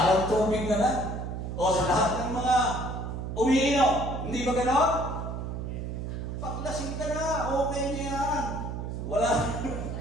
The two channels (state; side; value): noise; right; hum, 5 dB below the sound